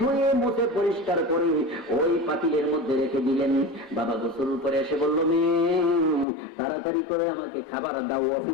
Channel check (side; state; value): right; drops out; at 6.2 s